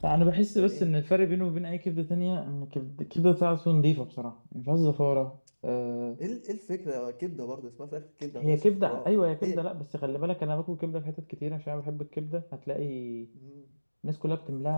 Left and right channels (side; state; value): both; inverted; correlation -1.00